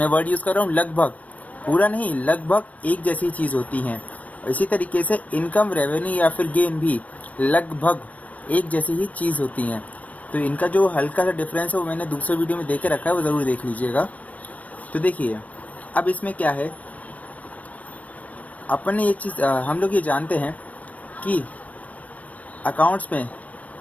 वर्ड यूज़ कर रहा हूँ लगभग, पूरा नहीं, लगभग एक जैसी चीज़ होती हैं। इसी तरीके से इनकम रेवेन्यू या फिर गेन भी लगभग एक जैसी ही चीज़ होती हैं। तो इनका जो हल्का सा डिफरेंस है वो मैंने दूसरे वीडियो में देके रखा है, वो ज़रूर देख लीजिएगा। तो देखिए, अब इसमें क्या है, अपन ये चीज़ हम लोग ये जानते हैं कि अकाउंट्स में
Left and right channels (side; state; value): right; late; 0.069 ms